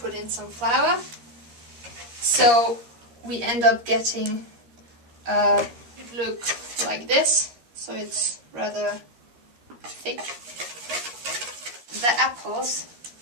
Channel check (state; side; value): late; left; 13 ms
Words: in some flour. So we end up getting it look like this. So it's rather thick. The apples,